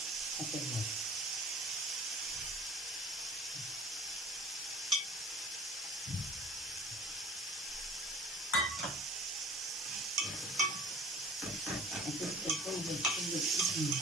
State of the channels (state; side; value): normal; both; correlation 0.47